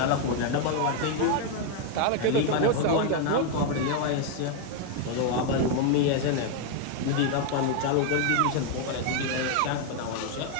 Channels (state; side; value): different; both; correlation 0.01